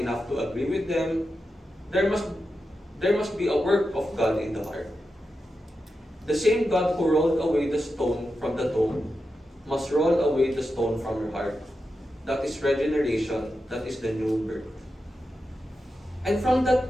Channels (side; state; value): both; normal; correlation 0.89